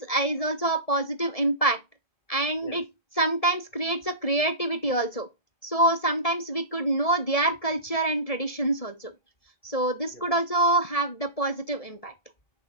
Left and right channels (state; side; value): late; right; 1.7 ms